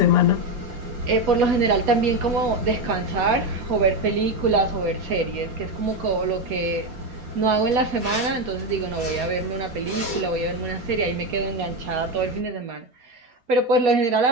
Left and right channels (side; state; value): left; late; 4.2 ms